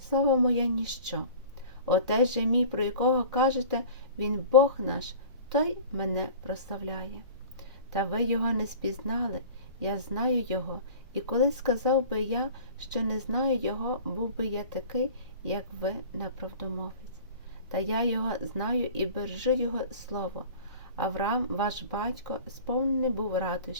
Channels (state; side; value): inverted; both; correlation -0.41